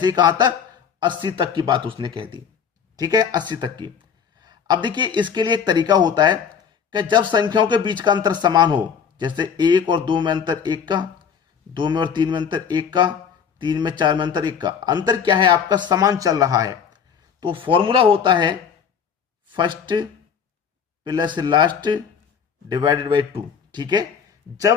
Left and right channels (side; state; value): right; quieter; 7.1 dB